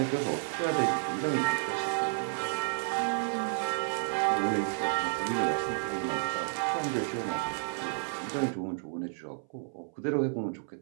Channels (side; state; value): left; silent; 57 dB below the other